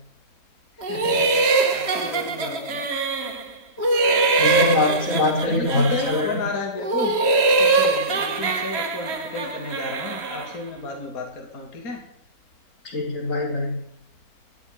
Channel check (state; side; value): late; right; 3.1 ms